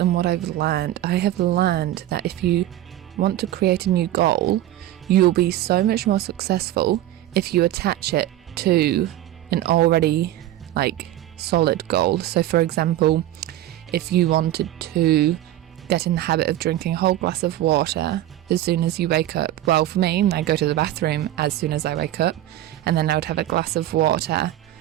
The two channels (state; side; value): quieter; left; 13.7 dB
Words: what I've learned. I have learned that if you want to create a new goal, you'll be so much more successful if you attach it to an already solid goal. So for example, if you wanted to get in the habit of drinking a whole glass of water as soon as you wake up, well, for me, I go to the bathroom as soon as I wake up, and then I would have a glass of water